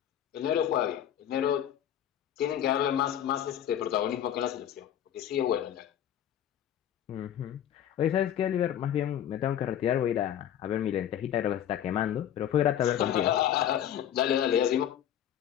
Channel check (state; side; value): quieter; right; 10.4 dB